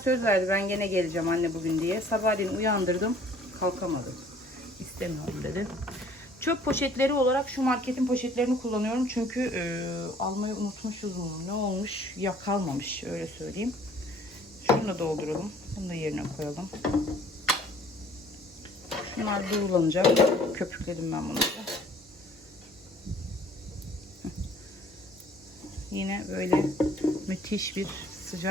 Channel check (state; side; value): normal; both; correlation 0.55